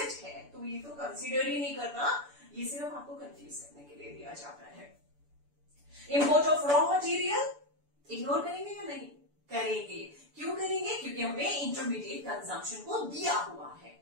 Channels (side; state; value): left; late; 6.9 ms